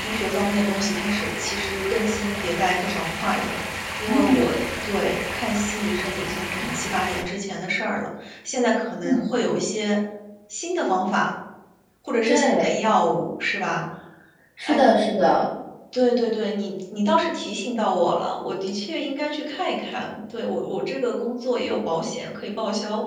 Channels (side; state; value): both; identical; correlation 1.00